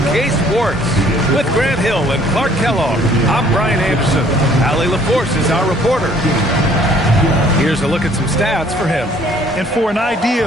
Sports. With Grant Hill and Clark Kellogg, I'm Brian Anderson. Allie LaForce is our reporter. Here's a look at some stats for him. And for an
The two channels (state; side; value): normal; both; correlation 0.59